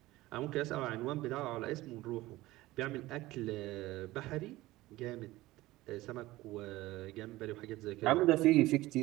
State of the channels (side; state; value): left; quieter; 18.1 dB